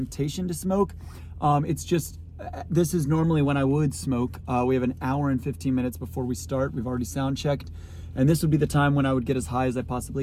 to smoke. This is normally when I would smoke. We have an hour and 15 minutes before we start. We've already sound checked. And this would be the time when I would get as high as I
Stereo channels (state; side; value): identical; both; correlation 1.00